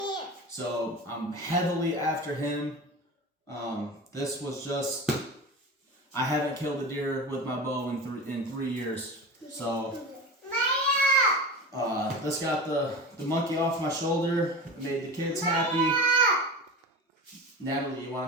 so I'm heavily after him. This was just I haven't killed a deer with my bow in 3 years. So this got the monkey off my shoulder. Made the kids happy. Natalie, you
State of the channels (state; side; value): normal; both; correlation 0.30